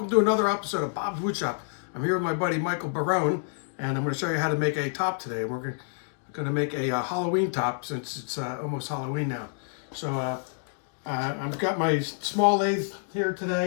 to another episode of Bob's Woodshop. I'm here with my buddy Michael Barone, and I'm going to show you how to make a top today. We're going to make a Halloween top since it's almost Halloween now. So I've got my small lathe here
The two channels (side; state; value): right; silent; digital silence